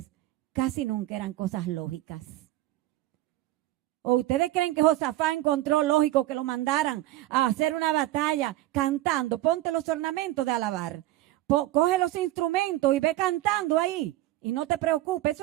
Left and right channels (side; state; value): left; quieter; 15.9 dB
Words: casi nunca eran cosas lógicas. ¿O ustedes creen que Josafá encontró lógico que lo mandaran a hacer una batalla cantando? Ponte los ornamentos de alabar. Coge los instrumentos y ve cantando ahí. Y no te preocupes,